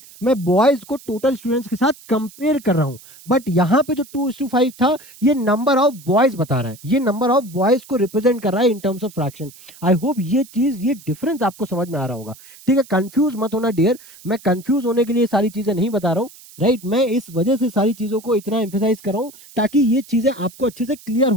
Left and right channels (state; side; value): noise; right; hiss, 21 dB below the sound